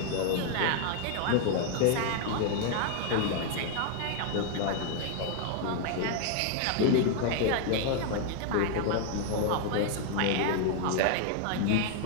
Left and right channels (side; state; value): both; different; correlation 0.00